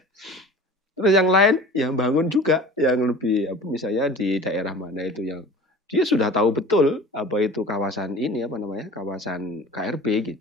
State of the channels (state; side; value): normal; both; correlation 0.41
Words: Terus yang lain yang bangun juga, yang lebih misalnya di daerah mana itu yang dia sudah tahu betul apa itu kawasan ini kawasan KRB